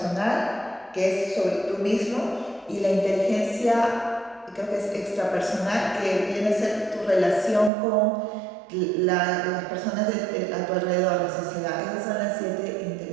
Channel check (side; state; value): left; drops out; at 7.7 s